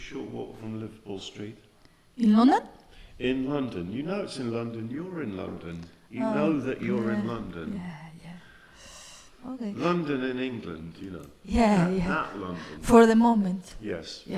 short walk from Liverpool Street. In London? In London, you know it's in London, you're in London. You know that you're in London. Yeah. Okay. London in England, you know. Yeah. That London. For the moment. Yes,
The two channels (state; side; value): identical; both; correlation 1.00